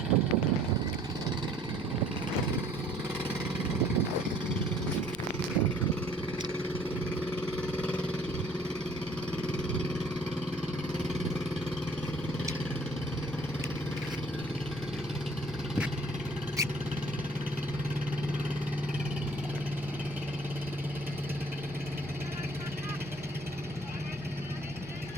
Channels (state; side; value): noise; left; rumble, 20 dB below the sound